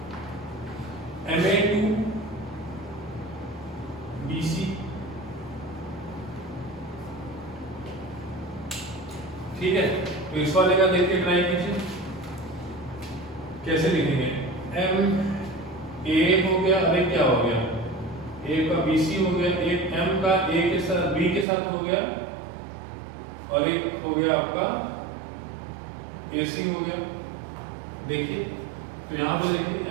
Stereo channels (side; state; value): left; drops out; at 21.5 s